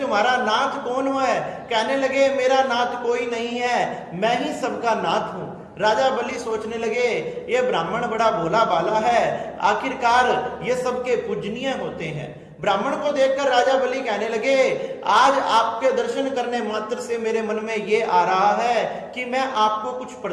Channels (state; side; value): identical; both; correlation 1.00